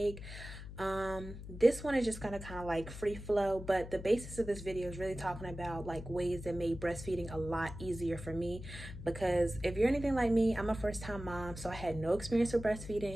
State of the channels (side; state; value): left; noise; hum, 11 dB below the sound